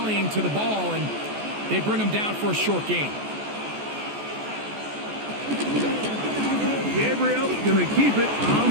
to the ball, and they bring him down for a short gain. Gabriel going to keep it on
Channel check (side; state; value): left; late; 14 ms